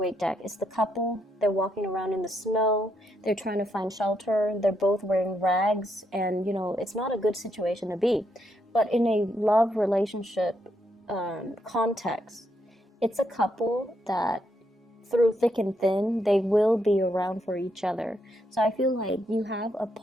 deck, it's the couple, they're walking around in the snow, they're trying to find shelter, they're both wearing rags, and, you know, it's not a good situation to be. But in a love relationship context, it's a couple that through thick and thin, they will be around for each other. So I feel like you have a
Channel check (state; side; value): normal; both; correlation 0.78